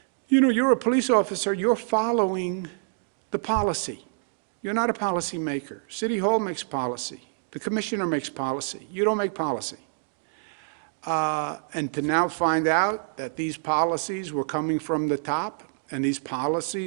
You know, you're a police officer, you're following the policy. You're not a policy maker. City Hall makes policy. The commissioner makes policy. You don't make policy. And to now find out that these policies were coming from the top and these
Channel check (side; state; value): left; silent; digital silence